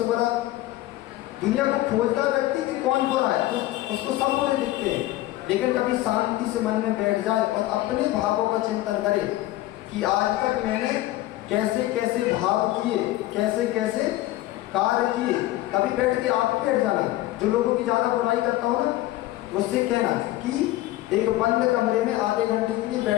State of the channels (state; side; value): quieter; right; 16.2 dB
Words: बुरा दुनिया को खोजता व्यक्ति कि कौन बुरा है, तो उसको सब बुरे दिखते हैं। लेकिन कभी शांति से मन में बैठ जाए और अपने भावों का चिंतन करे कि आज तक मैंने कैसे कैसे भाव किए, कैसे कैसे कार्य किए। कभी बैठ के आप बैठ जाना, जो लोगों की ज़्यादा बुराई करता हो ना, उससे कहना कि एक बंद कमरे में आधे घंटे के लिए